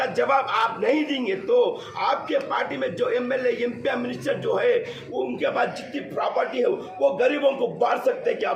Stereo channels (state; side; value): identical; both; correlation 1.00